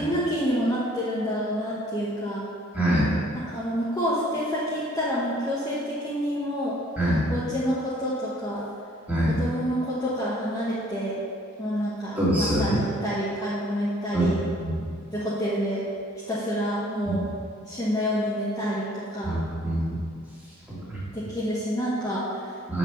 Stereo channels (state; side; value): normal; both; correlation 0.59